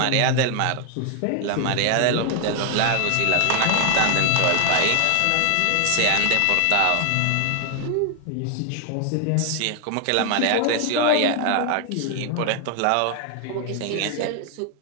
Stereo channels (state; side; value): different; both; correlation 0.00